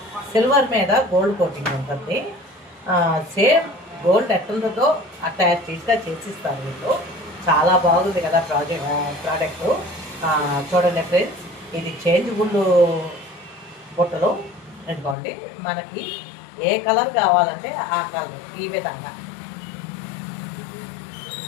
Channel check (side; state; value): right; drops out; at 15.2 s